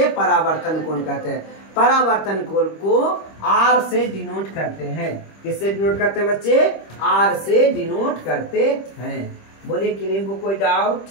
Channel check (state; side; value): late; right; 25 ms